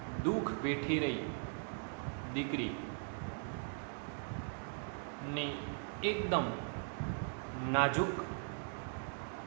દુઃખ વેઠી રહી દીકરી ની એકદમ નાજુક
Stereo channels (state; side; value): silent; left; 51 dB below the other